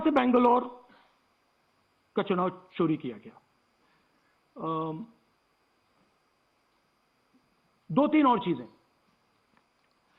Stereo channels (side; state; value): both; identical; correlation 1.00